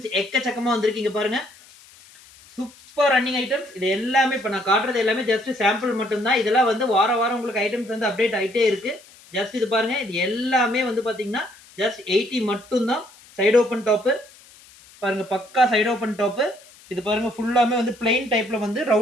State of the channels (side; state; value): left; noise; hiss, 24 dB below the sound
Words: எக்கச்சக்கமா வந்திருக்கு. இங்க பாருங்க. Super running items. இது எல்லாமே இப்ப நான் காட்டுறது எல்லாமே ஜஸ்ட் சாம்பிள் மட்டும் தான். இதெல்லாம் வந்து வாரம் உங்களுக்கு ஐட்டம்ஸ் வந்து அப்டேட் ஆயிட்டே இருக்கு. ஜஸ்ட் இது பாருங்க. இது எல்லாமே வந்து பார்த்தீங்கன்னா, ஜஸ்ட் 80 மட்டும் தான். சைடு ஓப்பன் டாப்பு பாருங்க, பக்கா சைடு ஓப்பன் டாப்பு. இது பாருங்க ஃபுல்லாமே வந்து பிளைன் டைப்ல வந்து